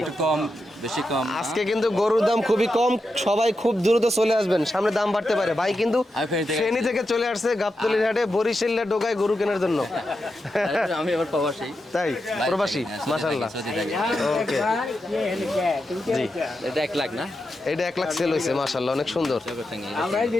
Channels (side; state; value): both; normal; correlation 0.88